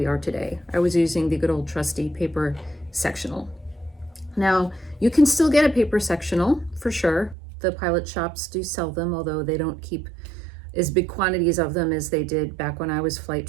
are today. I was using the good old trusty paper sectional. Now, you can still get a paper sectional for sure. The pilot shops do sell them, although they don't keep as big quantities of them as they did back when I was flight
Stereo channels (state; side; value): drops out; left; at 7.4 s